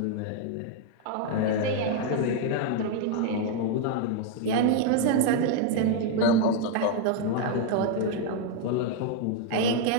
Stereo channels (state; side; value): different; both; correlation 0.00